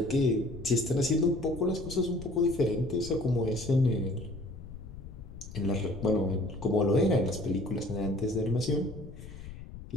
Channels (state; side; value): noise; left; rumble, 13 dB below the sound